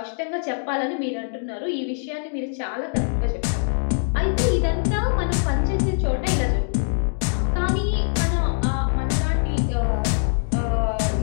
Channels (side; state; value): right; silent; digital silence